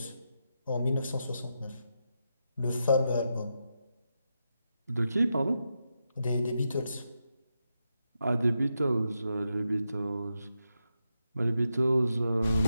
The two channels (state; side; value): inverted; both; correlation -0.86